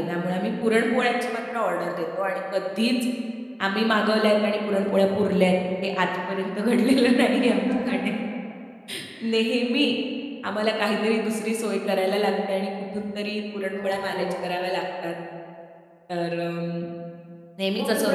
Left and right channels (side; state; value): both; identical; correlation 1.00